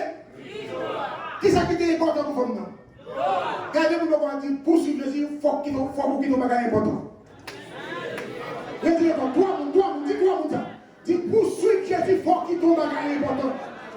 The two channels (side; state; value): both; identical; correlation 1.00